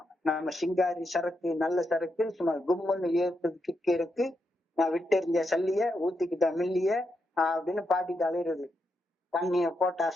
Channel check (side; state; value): both; normal; correlation 0.83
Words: நம்ம சிங்காரி சரக்கு, நல்ல சரக்கு, சும்மா கும்முன்னு ஏற்பது கிக்கு இருக்கு, நான் விட்டெறிஞ்ச சல்லிய ஊத்திக்கிட்ட மில்லிய அப்படின்னு பாட்டிட்டு அலையிறது. தண்ணிய போட்டா